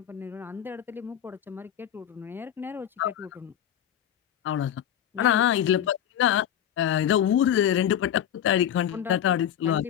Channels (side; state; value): right; quieter; 10.1 dB